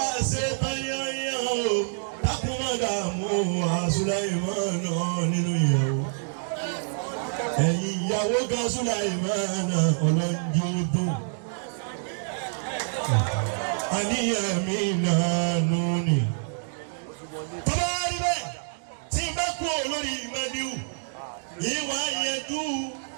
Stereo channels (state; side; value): silent; left; digital silence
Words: ṣe tán yányán o dákun má dààmú Sùláìmánù nínú ìyàwó. ẹ̀yin ìyàwó gan Sùláìmánù ọlọ́njọ́ dùn. àníyàn mi nànú ni. tọ́lá rí bẹ́ẹ̀ tí n bá kú olórí mẹ́díù ìwà ìyẹ̀dú